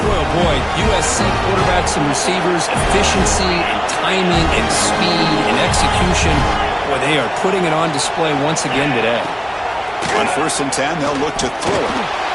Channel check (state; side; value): identical; both; correlation 1.00